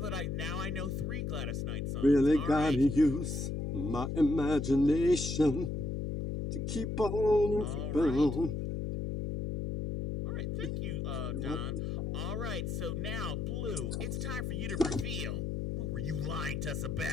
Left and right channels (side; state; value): left; noise; hum, 2 dB below the sound